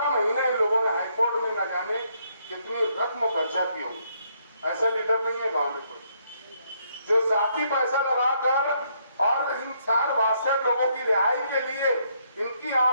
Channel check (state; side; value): inverted; both; correlation -0.72